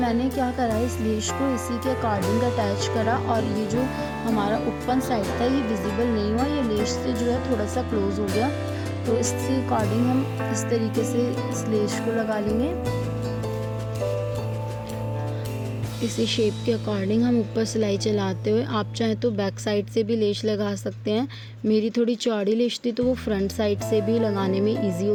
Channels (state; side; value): identical; both; correlation 1.00